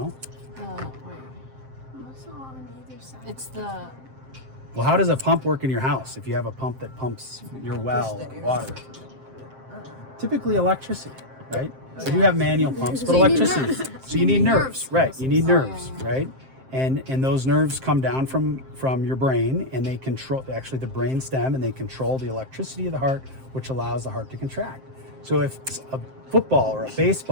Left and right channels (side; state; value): left; late; 7.6 ms